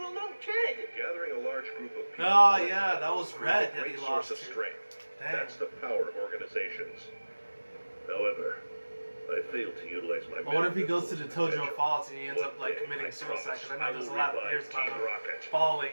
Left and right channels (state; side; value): inverted; both; correlation -1.00